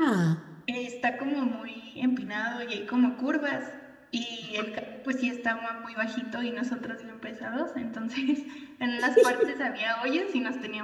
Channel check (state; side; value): identical; both; correlation 1.00